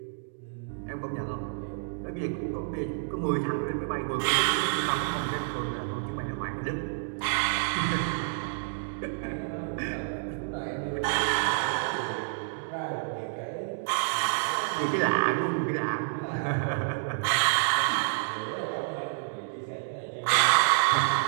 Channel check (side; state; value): left; silent; digital silence